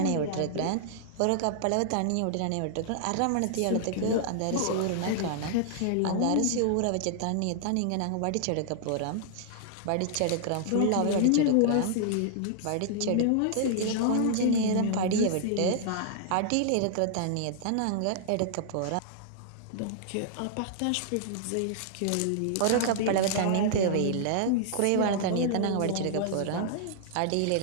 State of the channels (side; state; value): both; different; correlation -0.01